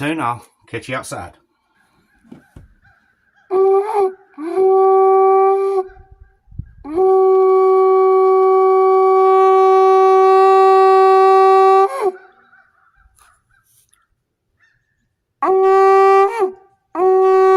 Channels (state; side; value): identical; both; correlation 1.00